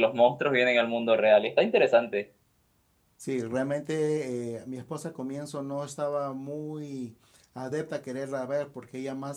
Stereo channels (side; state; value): both; identical; correlation 1.00